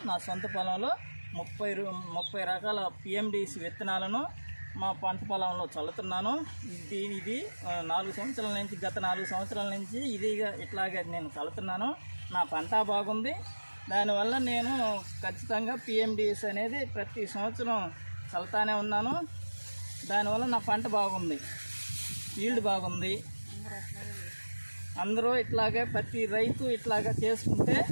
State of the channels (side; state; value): both; inverted; correlation -1.00